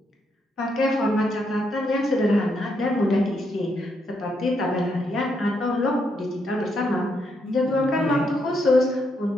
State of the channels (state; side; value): normal; both; correlation 0.78